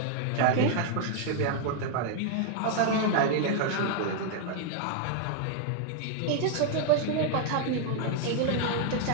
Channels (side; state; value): both; different; correlation 0.00